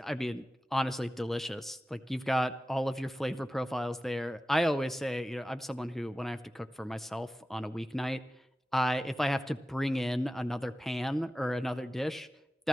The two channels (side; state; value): both; normal; correlation 0.95